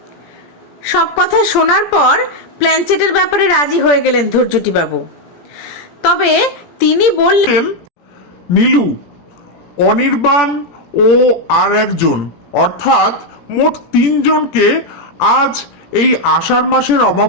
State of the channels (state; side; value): late; right; 17 ms